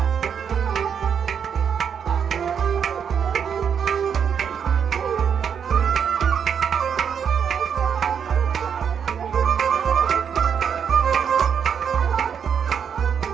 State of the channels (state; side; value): quieter; left; 7.5 dB